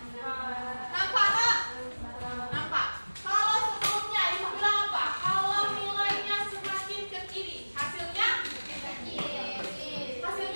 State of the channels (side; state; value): both; inverted; correlation -1.00